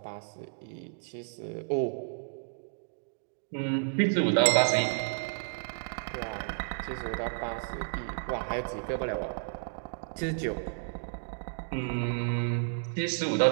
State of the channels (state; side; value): silent; left; digital silence